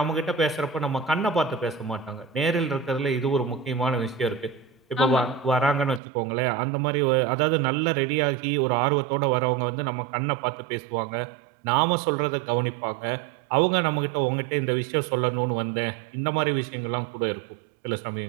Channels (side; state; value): left; drops out; at 6.0 s